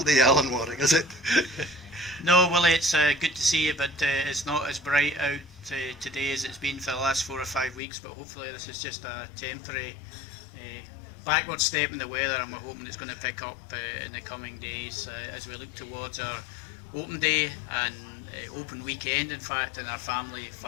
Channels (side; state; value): right; drops out; at 7.8 s